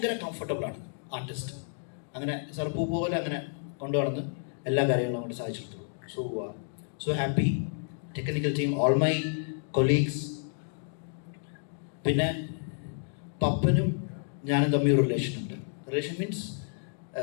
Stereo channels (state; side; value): silent; right; digital silence